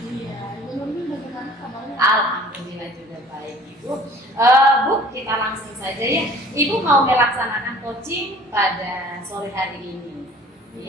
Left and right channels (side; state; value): both; normal; correlation 0.49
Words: Iya, Ibu bagaimana kabarnya? Alhamdulillah juga baik Ibu. Bu, kita langsung saja ya. Ibu mau melaksanakan coaching pada sore hari ini.